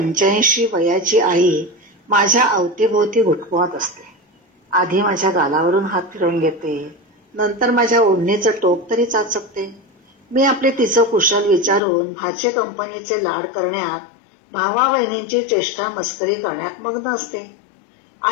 वयाची आई माझ्या अवतीभोवती घुटमळत असते. आधी माझ्या गालावरून हात फिरवून घेते, नंतर माझ्या ओढणीचं टोक तरी चाचपते. मी आपले तिचं कुशल विचारून भाचे कंपनीचे लाड करण्यात, भावा बहिणींची चेष्टा मस्करी करण्यात मग्न असते.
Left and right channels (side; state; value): right; drops out; at 11.8 s